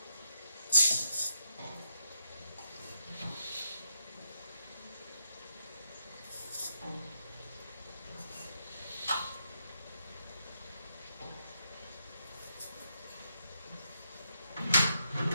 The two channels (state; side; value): inverted; both; correlation -0.81